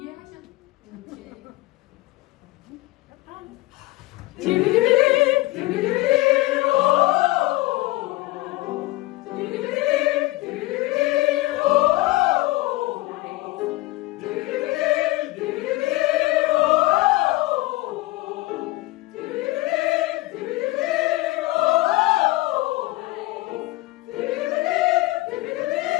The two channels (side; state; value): right; quieter; 19.3 dB